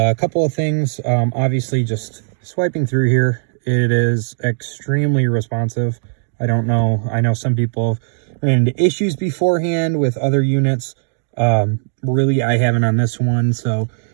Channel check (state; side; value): silent; left; digital silence